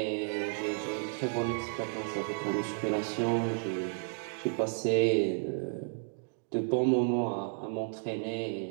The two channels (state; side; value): silent; left; 56 dB below the other